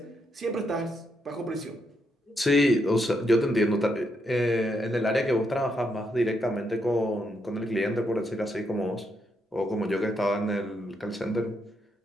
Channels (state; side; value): normal; both; correlation 0.79